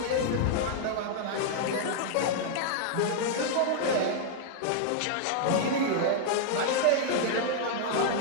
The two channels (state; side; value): different; both; correlation -0.01